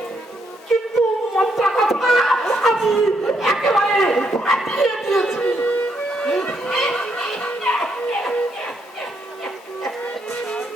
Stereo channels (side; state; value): both; normal; correlation 0.76